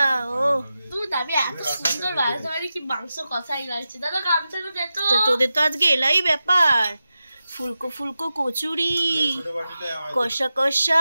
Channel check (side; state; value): both; inverted; correlation -0.92